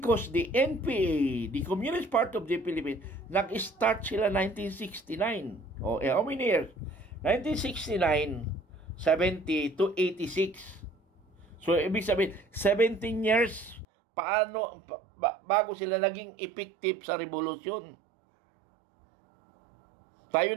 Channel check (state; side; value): drops out; left; at 13.9 s